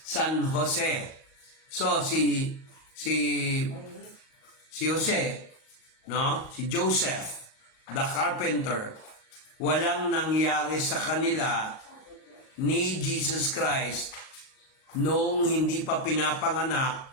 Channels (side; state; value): right; late; 37 ms